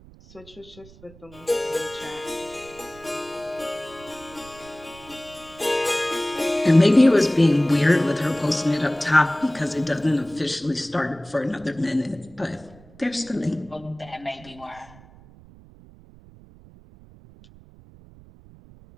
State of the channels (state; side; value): noise; right; rumble, 23 dB below the sound